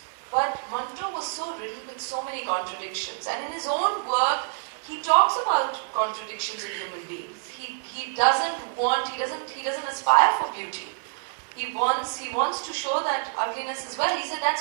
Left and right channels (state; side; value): silent; left; digital silence